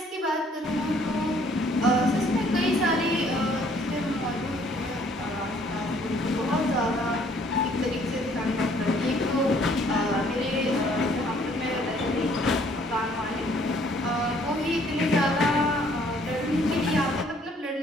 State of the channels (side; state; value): both; normal; correlation 0.61